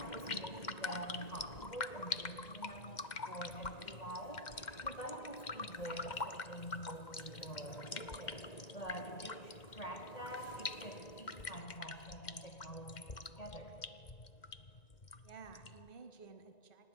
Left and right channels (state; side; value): late; right; 2.1 ms